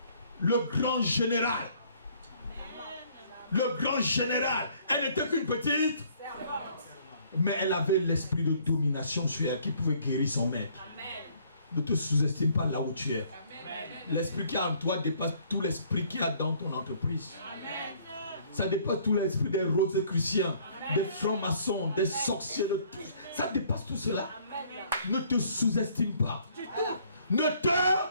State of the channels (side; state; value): both; inverted; correlation -0.61